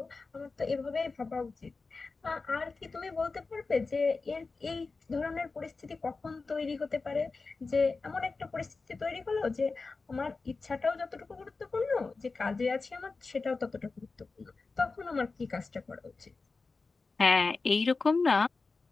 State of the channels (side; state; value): right; quieter; 4.1 dB